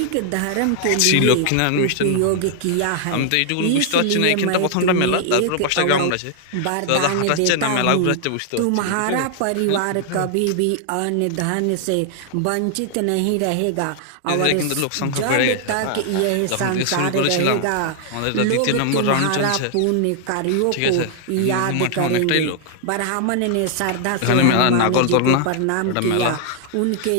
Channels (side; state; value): both; different; correlation 0.00